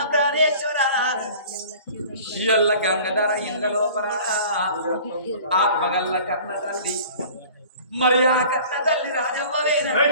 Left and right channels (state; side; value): inverted; both; correlation -0.45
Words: ప్రాణేశ్వర ఎల్ల గంగధర ఇండ్ల లోపల ఆత్మగల్ల కన్న తల్లి మరి ఆ కన్న తల్లి రాజవ్వవేనా